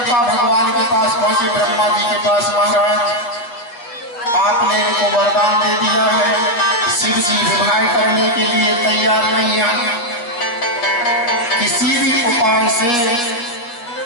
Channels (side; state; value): right; late; 8.4 ms